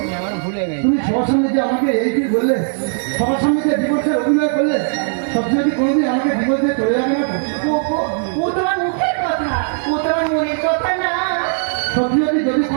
তুমি সবার সামনে যে আমাকে এই কি বললে, সবার সামনে যে ডিভোর্সের অভিনয় করলে, সবচেয়ে কি কোনোদিন আমাকে ডিভোর্স দিয়ে চলে যাবে না তো? ও তোমার মুখের কথা, ও তোমার মনের কথা না। সত্যি যদি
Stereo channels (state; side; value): silent; left; 67 dB below the other